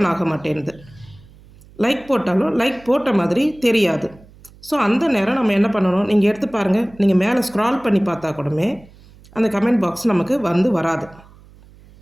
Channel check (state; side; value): noise; right; hum, 24 dB below the sound